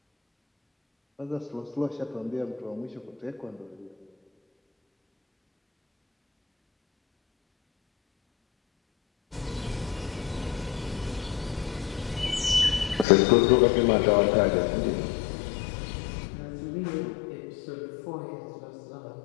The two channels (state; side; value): drops out; right; at 13.1 s